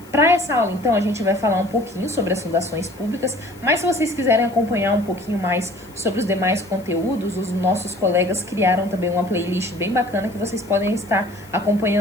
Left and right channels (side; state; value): left; noise; hiss, 25 dB below the sound